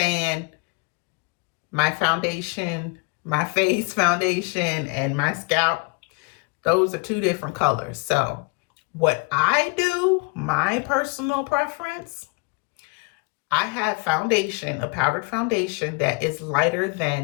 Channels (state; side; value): quieter; right; 30.5 dB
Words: my foundation, my face foundation, and my scalp, those are 2 different colors. So what I do, my personal preference, I have foundation, a powdered foundation that is lighter